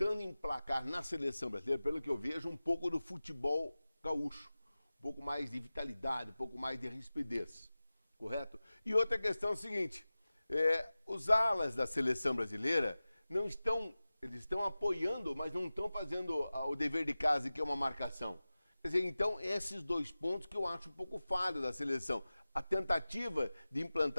emplacar na seleção brasileira, pelo que eu vejo, um pouco do futebol gaúcho. Um pouco mais de vitalidade, um pouco mais de rispidez. Correto? E outra questão é o seguinte, os alas da seleção brasileira eles estão apoiando, mas não estão fazendo o dever de casa, que é uma marcação. Quer dizer, então, esses 2 pontos que eu acho um pouco falho da seleção. A tentativa de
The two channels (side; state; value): both; inverted; correlation -0.97